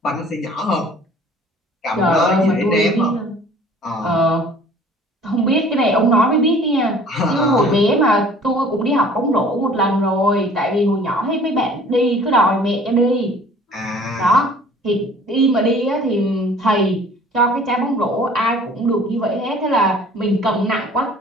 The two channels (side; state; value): both; normal; correlation 0.50